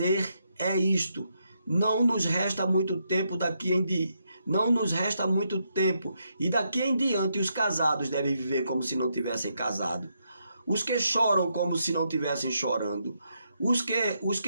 isto, não nos resta muito tempo e daqui em diante os casados devem viver como se não tivessem casado. Os que choram como se não estivessem chorando. Os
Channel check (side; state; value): both; inverted; correlation -0.79